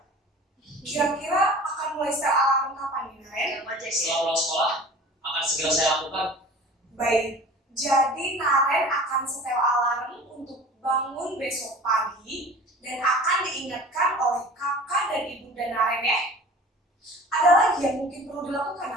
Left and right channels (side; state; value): both; normal; correlation 0.42